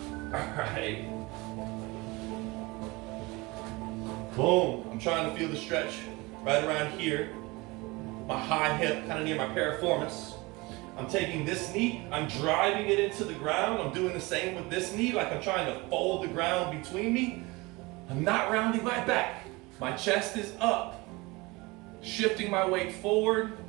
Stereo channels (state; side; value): quieter; left; 23.9 dB